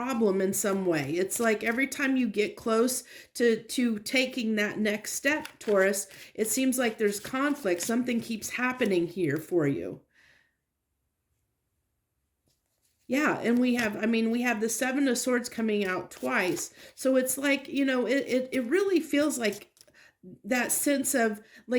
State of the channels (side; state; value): both; identical; correlation 1.00